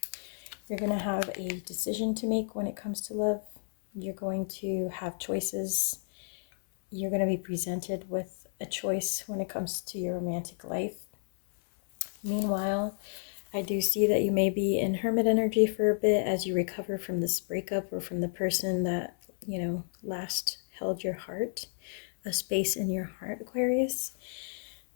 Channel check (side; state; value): right; silent; 57 dB below the other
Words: You're going to have a decision to make when it comes to love. You're going to have choices. You're going to be presented with a choice when it comes to your romantic life. Meanwhile, I do see that you may be in hermit energy for a bit as you recover from this breakup or from the person that, you know, last held your heart, a space in your heart, Aquarius.